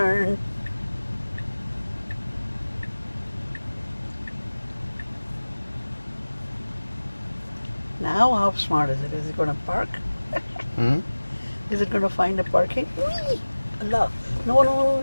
Now how smart is it? Is it going to park? Hmm? Is it going to find a parking? Whee! Allah. No, no, no,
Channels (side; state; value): both; inverted; correlation -1.00